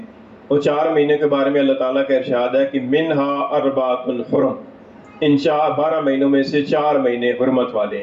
وہ 4 مہینے کے بارے میں اللہ تعالیٰ کا ارشاد ہے کہ منہا 4 حرم، ان 12 مہینوں میں سے 4 مہینے حرمت والے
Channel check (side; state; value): both; identical; correlation 1.00